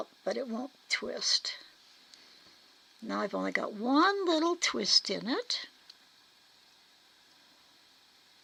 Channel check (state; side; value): identical; both; correlation 1.00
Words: but it won't twist. Now I've only got one little twist in it.